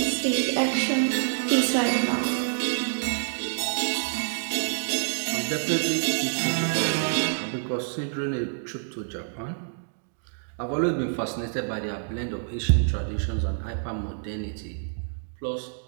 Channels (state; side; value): silent; left; digital silence